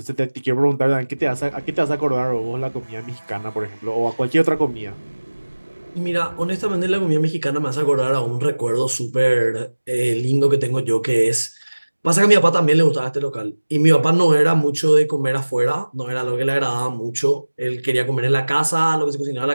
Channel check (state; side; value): inverted; both; correlation -1.00